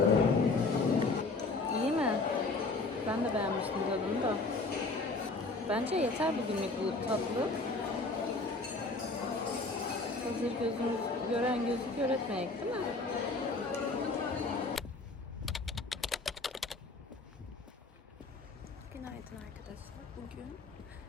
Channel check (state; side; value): quieter; right; 3.5 dB